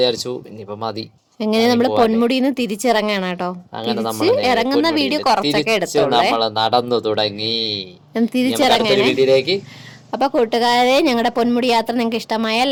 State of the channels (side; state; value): both; identical; correlation 1.00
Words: ഇനിയിപ്പോ മതി. എങ്ങനെ നമ്മള് പൊന്മുടിന്ന് തിരിച്ചിറങ്ങാണ് കേട്ടോ. ഇറങ്ങുന്ന വീഡിയോ കുറച്ചൊക്കെ എടുത്തോളേ. നടന്നു തുടങ്ങി തിരിച്ചിറങ്ങാനേ. അപ്പൊ കൂട്ടുകാരെ, ഞങ്ങളുടെ പൊന്മുടി യാത്ര നിങ്ങൾക്ക് ഇഷ്ടമായ